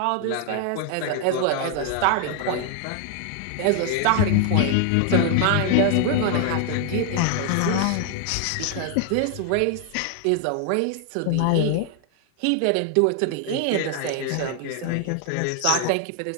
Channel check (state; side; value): different; both; correlation 0.00